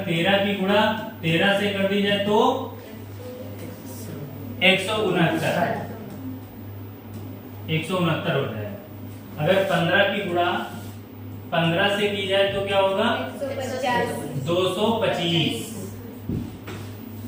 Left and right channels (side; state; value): both; identical; correlation 1.00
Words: 13 की गुणा 13 से कर दी जाए तो 169 हो जाएगा। अगर 15 की गुणा 15 से की जाए तो क्या होगा? 225।